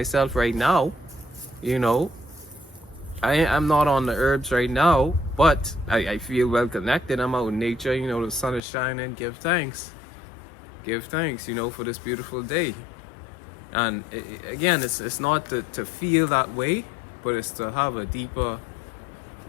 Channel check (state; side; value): drops out; right; at 8.6 s